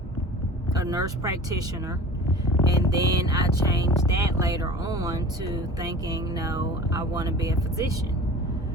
nurse practitioner. And then I changed that later on to thinking, no, I want to be a physician.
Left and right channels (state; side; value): normal; both; correlation 0.40